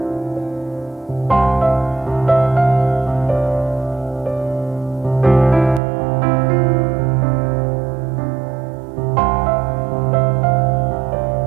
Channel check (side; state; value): left; drops out; at 5.8 s